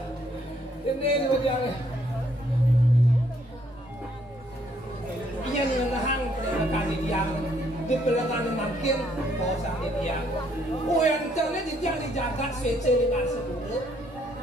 ini bagian. Ia ni nahang kali dia di pelengan makin bosan dia. Oh yang terlihat dia dijaga swece dengan sepuluh.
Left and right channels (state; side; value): normal; both; correlation 0.68